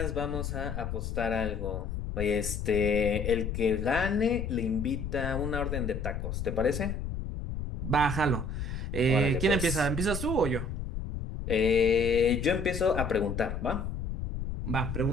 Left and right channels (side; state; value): left; noise; rumble, 4 dB below the sound